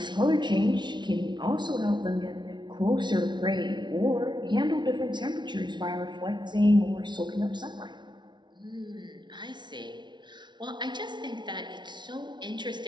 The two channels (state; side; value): late; left; 0.22 ms